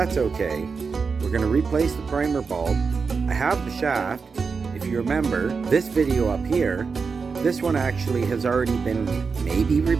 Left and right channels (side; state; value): left; quieter; 5.1 dB